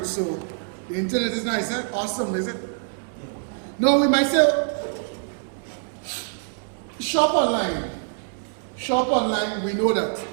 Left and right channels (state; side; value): silent; left; 62 dB below the other